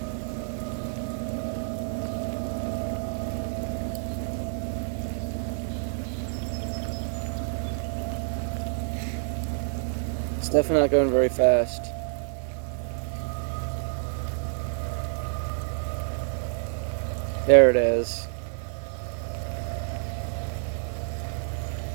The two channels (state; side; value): silent; left; digital silence